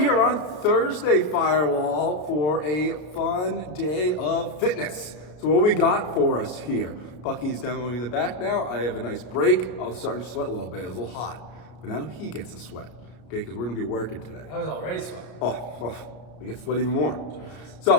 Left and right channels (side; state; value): right; late; 33 ms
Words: on Thursday Firewall for a fun day of fitness. So what we got for us here? Bucky's demoing in the back now. I have a nice break. I was starting to sweat a little bit. It was a little hot. But now he gets to sweat, okay? Because we're going to be working today. I was already sweating. I get to sweat even more.